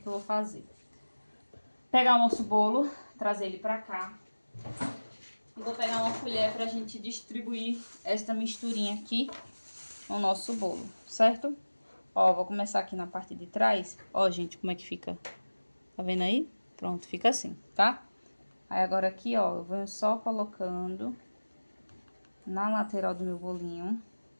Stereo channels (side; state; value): both; inverted; correlation -1.00